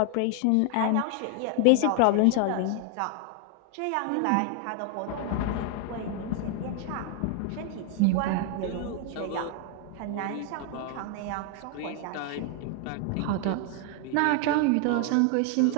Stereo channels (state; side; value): different; both; correlation 0.00